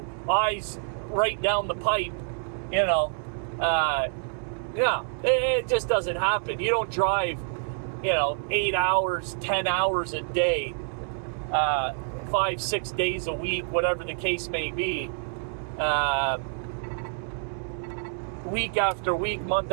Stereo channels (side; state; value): left; silent; digital silence